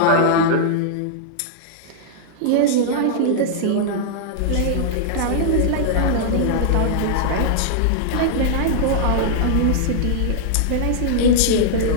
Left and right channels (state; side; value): different; both; correlation -0.01